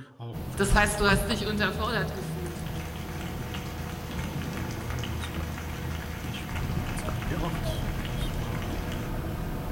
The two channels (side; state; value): both; identical; correlation 1.00